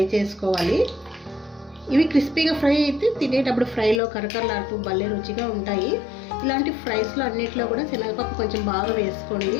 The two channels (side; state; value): right; drops out; at 4.0 s